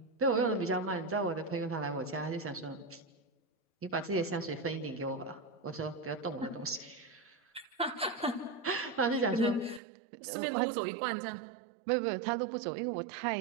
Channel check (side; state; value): left; drops out; at 9.8 s